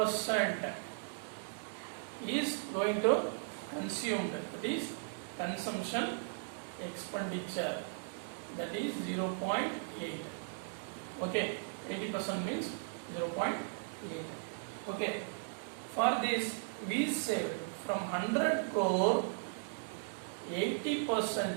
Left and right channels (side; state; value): left; silent; digital silence